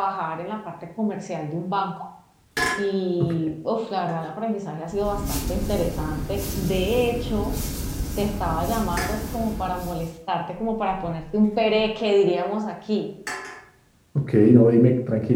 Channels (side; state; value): both; identical; correlation 1.00